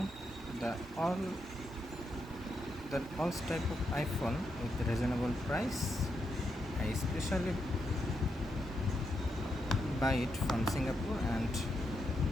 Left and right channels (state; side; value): normal; both; correlation 0.83